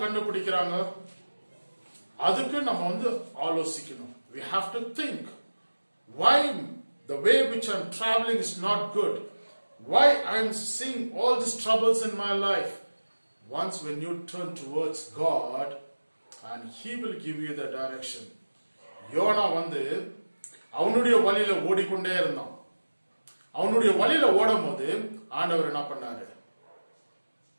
கண்டுபிடிக்கிறாங்க? அதுக்கு நம்ம ஆலோசிக்கணும். We have to think, why the way which I'm traveling is not good, why I'm seeing all these troubles in my life. Once when you turn towards God, and He will give you the direction. Jonah அவனுடைய வழியில ஓடிக்கொண்டே இருந்தான். அவனுடைய வழியில ஓடும் போது ஆண்டவர் என்ன பண்ணாரு?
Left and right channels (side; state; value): both; inverted; correlation -1.00